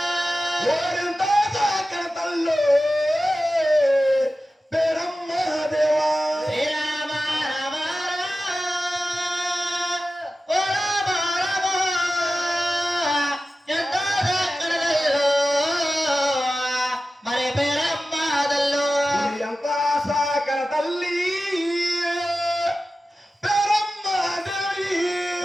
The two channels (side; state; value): both; normal; correlation 0.94